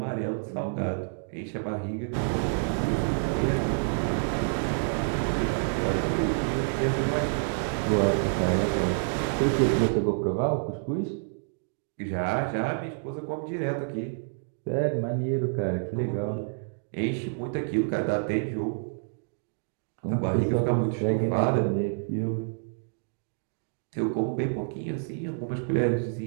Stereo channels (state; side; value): silent; left; digital silence